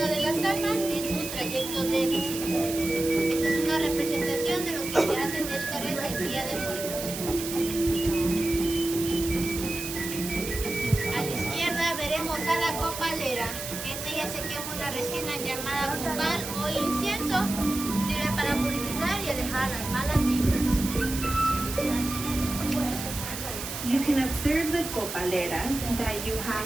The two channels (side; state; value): right; noise; hiss, 7 dB below the sound